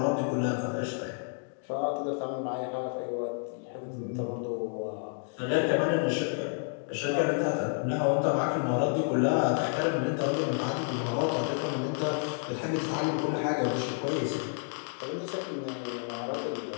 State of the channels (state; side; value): silent; right; 58 dB below the other